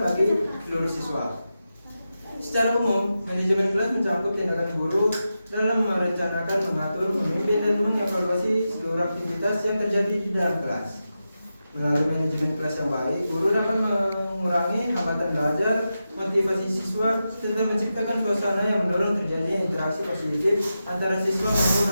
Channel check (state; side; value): inverted; both; correlation -0.90